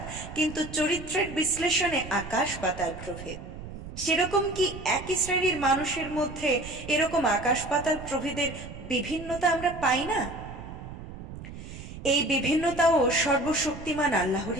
কিন্তু চরিত্রের বিশ্লেষণে আকাশ পাতাল প্রভেদ। সেরকম কি একই শ্রেণীর মানুষের মধ্যে এরকম আকাশ পাতাল প্রভেদের বিভিন্নতা আমরা পাই না? এই বিভিন্নতাও সর্বশক্তিমান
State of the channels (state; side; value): noise; right; rumble, 12 dB below the sound